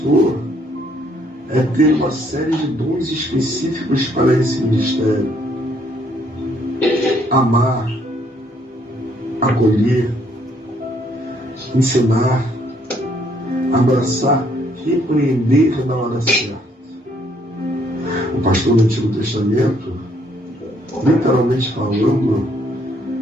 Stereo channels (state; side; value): normal; both; correlation 0.67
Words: é ter uma série de dons específicos para esse ministério. Amar, acolher, ensinar, abraçar, repreender na hora certa. O pastor do Antigo Testamento, literalmente falando,